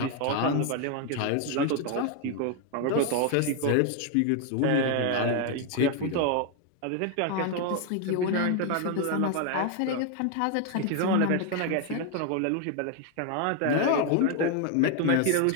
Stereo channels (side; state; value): both; different; correlation 0.01